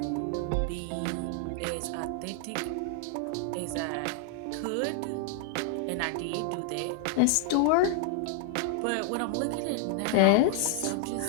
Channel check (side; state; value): both; different; correlation 0.00